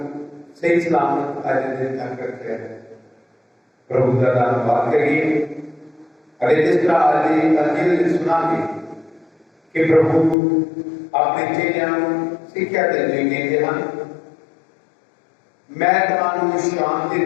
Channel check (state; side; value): drops out; right; at 10.4 s